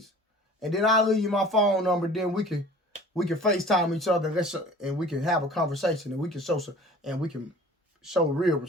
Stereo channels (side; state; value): both; normal; correlation 0.45